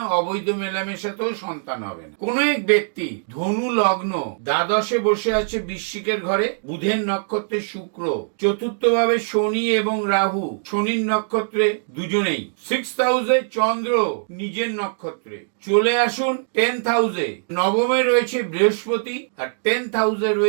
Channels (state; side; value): silent; left; digital silence